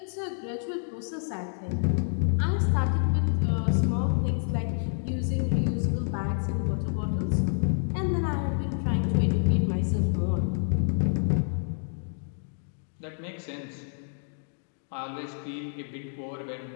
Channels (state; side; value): silent; right; digital silence